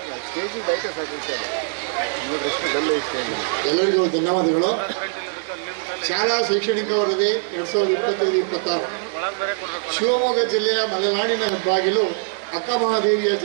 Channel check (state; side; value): silent; left; 58 dB below the other